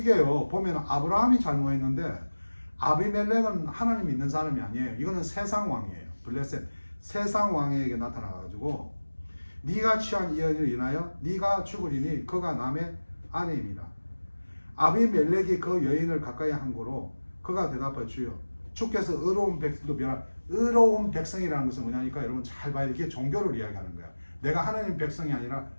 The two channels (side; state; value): both; inverted; correlation -1.00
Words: 보면 아브라함이 잘못했는데 아비멜렉은 하나님 믿는 사람이 아니에요. 이거는 세상 왕이에요. 블레셋 세상 왕에게 나타나가지고 네가 취한 이 여인을 인하여 네가 죽으리니 그가 남의 아내입니다. 아비멜렉이 그 여인을 가까이 한 거로 그가 대답하여 주여 주께서 의로운 백성도 변한 의로운 백성이라는 것은 뭐냐니까 여러분 잘 봐야 돼. 이게 종교를 이야기하는 거야. 내가 하나님 백성이 아니라